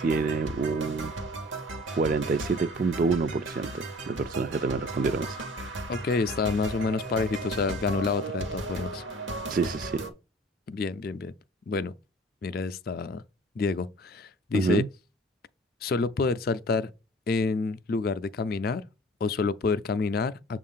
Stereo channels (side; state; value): both; normal; correlation 0.47